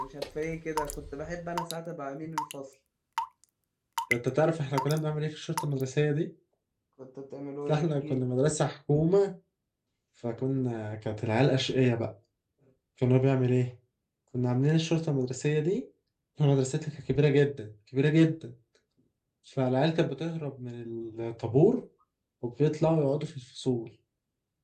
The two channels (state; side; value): identical; both; correlation 1.00